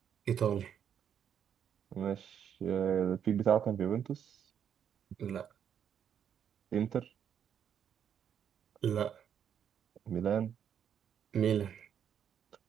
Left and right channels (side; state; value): left; quieter; 8.6 dB